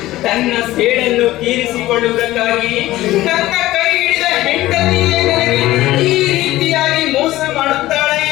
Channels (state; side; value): quieter; right; 16.3 dB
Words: ತನ್ನ ಸೇಡನ್ನು ತೀರಿಸಿಕೊಳ್ಳುವುದಕ್ಕಾಗಿ ನನ್ನ ಕೈ ಹಿಡಿದ ಹೆಂಡತಿಯೇ ನನಗೆ ಈ ರೀತಿಯಾಗಿ ಮೋಸ ಮಾಡುತ್ತಾಳೆ